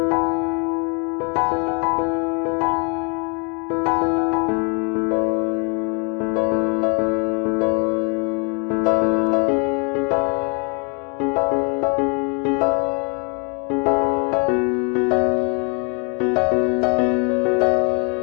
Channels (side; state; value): right; quieter; 34.9 dB